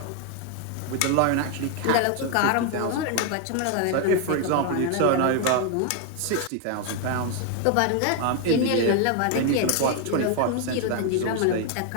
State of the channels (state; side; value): different; both; correlation 0.01